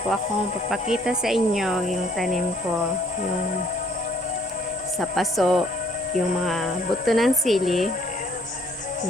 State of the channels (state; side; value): normal; both; correlation 0.63